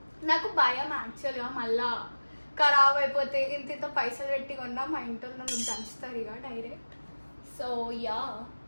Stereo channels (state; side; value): inverted; both; correlation -1.00